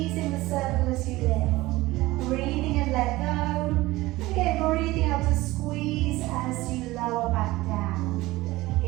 the circle as you lift. Breathing in, let go. And again, breathing out to squeeze as you lower back down.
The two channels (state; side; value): quieter; left; 18.9 dB